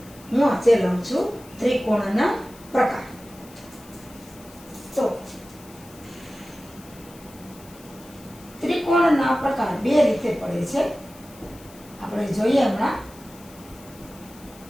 હું આજે લઉં છું ત્રિકોણના પ્રકાર. તો ત્રિકોણના પ્રકાર બે રીતે પડે છે. આપણે જોઈએ હમણાં.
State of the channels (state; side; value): noise; left; hiss, 22 dB below the sound